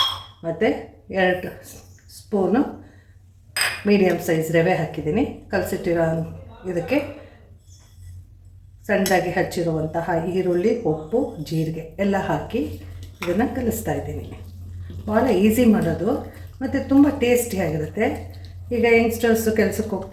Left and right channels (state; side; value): identical; both; correlation 1.00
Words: ಮತ್ತು 2 ಸ್ಪೂನು ಮೀಡಿಯಮ್ ಸೈಜ್ ರವೆ ಹಾಕಿದ್ದೀನಿ. ಕಲಸಿಟ್ಟಿರೋ ಇದಕ್ಕೆ ಸಣ್ಣದಾಗಿ ಹಚ್ಚಿರುವಂತಹ ಈರುಳ್ಳಿ, ಉಪ್ಪು, ಜೀರಿಗೆ ಎಲ್ಲ ಹಾಕಿ ಇದನ್ನು ಕಲಿಸ್ತಾ ಇದ್ದೀನಿ. ಭಾಳ ಈಸಿ ಮಾಡೋದು ಮತ್ತು ತುಂಬ ಟೇಸ್ಟಿಯಾಗಿರುತ್ತೆ. ಈಗ ಯಂಗ್ಸ್ಟರ್ಸು ಕೆಲಸಕ್ಕೆ